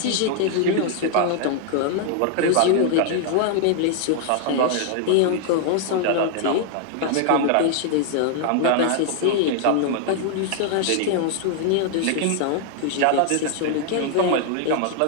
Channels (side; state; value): both; different; correlation 0.00